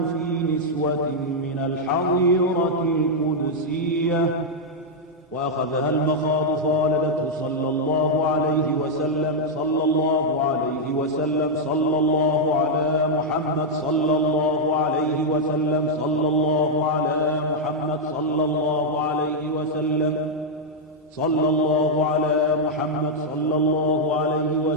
في نسوة من الحظيرة القدسية وأخذها المخاض فولدته صلى الله عليه وسلم صلى الله عليه وسلم صلى الله على محمد صلى الله عليه وسلم صلى الله على محمد صلى الله عليه وسلم صلى الله على محمد صلى الله عليه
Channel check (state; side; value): normal; both; correlation -0.03